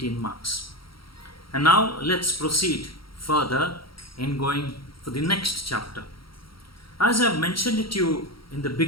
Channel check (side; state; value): right; late; 0.74 ms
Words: marks. And now let's proceed further in going for the next chapter. As I have mentioned it to you in the